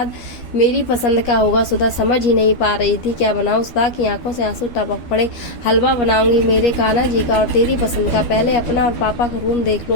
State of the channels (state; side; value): late; right; 12 ms